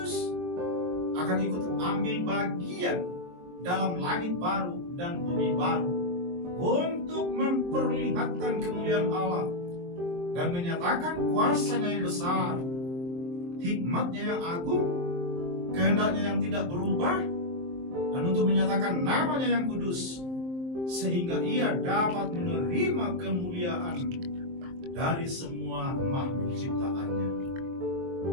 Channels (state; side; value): late; left; 23 ms